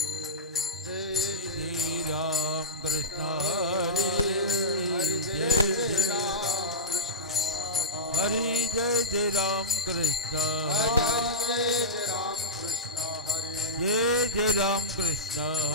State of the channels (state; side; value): normal; both; correlation -0.11